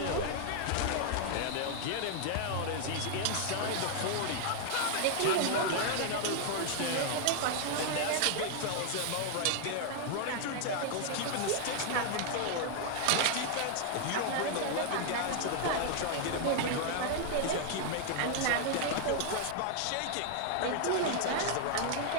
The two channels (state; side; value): different; both; correlation 0.00